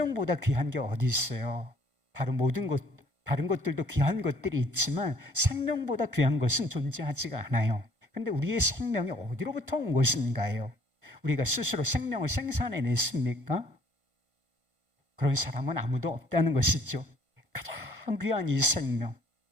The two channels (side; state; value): left; late; 1.5 ms